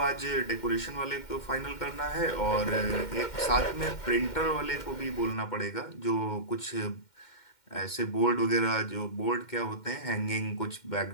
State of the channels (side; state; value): right; late; 2.1 ms